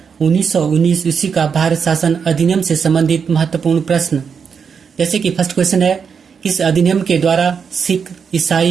1919 ईस्वी का भारत शासन अधिनियम से संबंधित महत्वपूर्ण प्रश्न। जैसे कि फर्स्ट क्वेश्चन है, इस अधिनियम के द्वारा सिख,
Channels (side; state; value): left; quieter; 6.4 dB